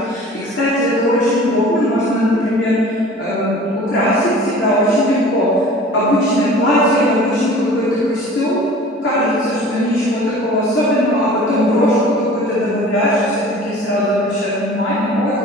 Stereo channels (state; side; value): normal; both; correlation 0.44